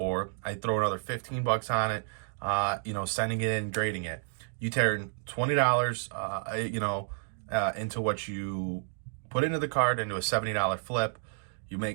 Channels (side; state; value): left; silent; digital silence